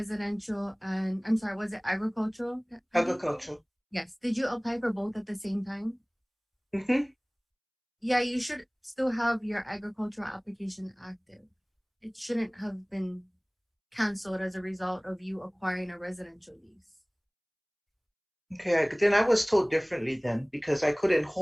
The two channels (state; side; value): identical; both; correlation 1.00